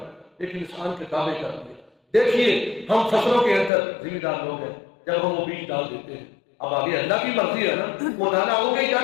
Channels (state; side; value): drops out; right; at 3.7 s